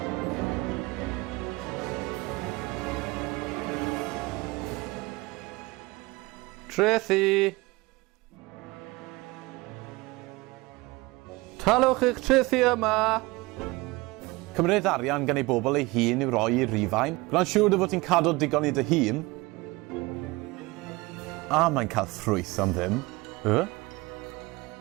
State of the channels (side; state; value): left; quieter; 22.6 dB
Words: Tracy! Talwch eich Tracy yma! Cymryd arian gan ei bobl ei hun i'w roi i Rhufain. Gwna'n siŵr dy fod ti'n cadw digon i dy hun. A mae'n cael ffrwyth am ddim.